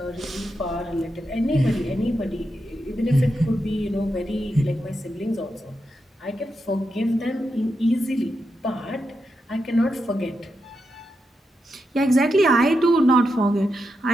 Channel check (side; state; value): both; normal; correlation 0.86